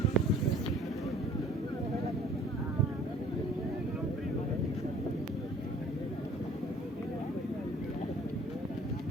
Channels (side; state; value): both; normal; correlation 0.53